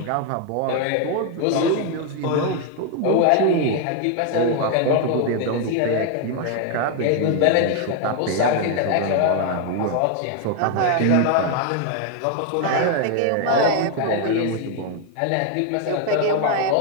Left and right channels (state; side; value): different; both; correlation 0.01